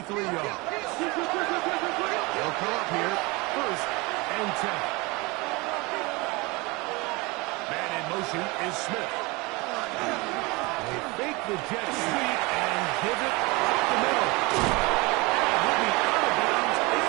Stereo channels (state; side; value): quieter; left; 25.2 dB